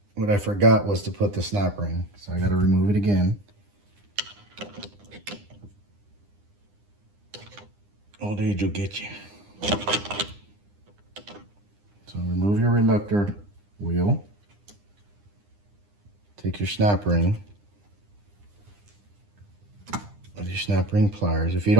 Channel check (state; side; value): late; left; 9.9 ms